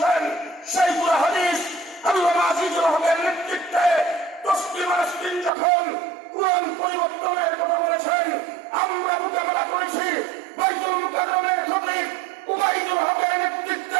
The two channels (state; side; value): drops out; left; at 5.5 s